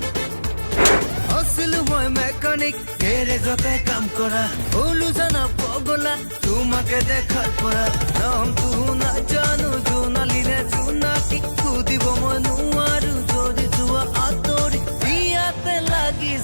আছিলো মই মেকানিক গেৰেজতে কাম কৰা হলো জানা পগলা তোমাকে দেখার পৰা নাম তো না জানো জোনালিনে জোনাকি খুদিব মই নোৱাৰো যদি যোৱা আতৰি বিয়াতে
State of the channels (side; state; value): both; inverted; correlation -1.00